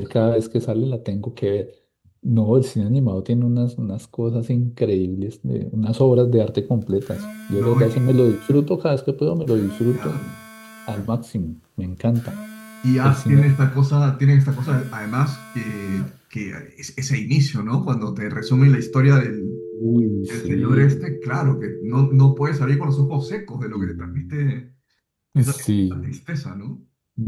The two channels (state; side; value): identical; both; correlation 1.00